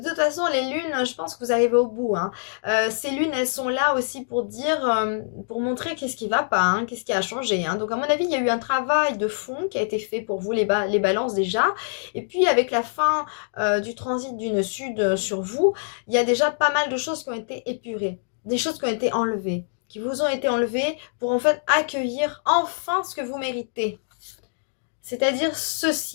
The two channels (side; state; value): right; silent; digital silence